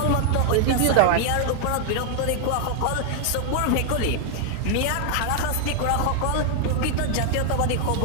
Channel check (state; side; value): different; both; correlation 0.00